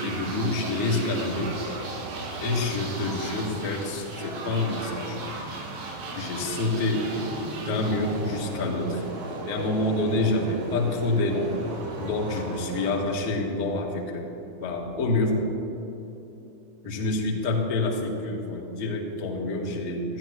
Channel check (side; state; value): left; late; 21 ms